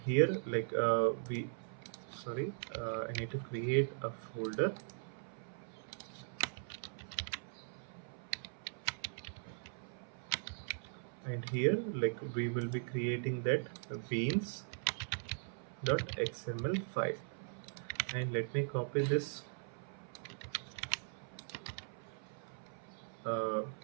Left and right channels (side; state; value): left; silent; 51 dB below the other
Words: I need to create a folder, and here like we will be creating that beans.xml file, and let me copy this uh,